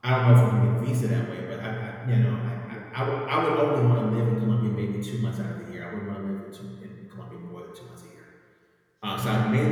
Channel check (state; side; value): identical; both; correlation 1.00